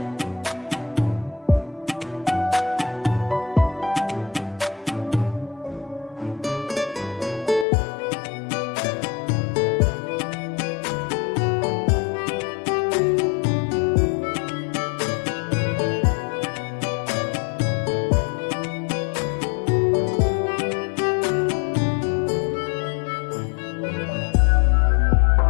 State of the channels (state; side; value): drops out; right; at 7.7 s